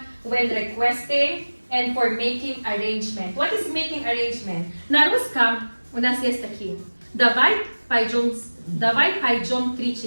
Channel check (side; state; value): both; inverted; correlation -1.00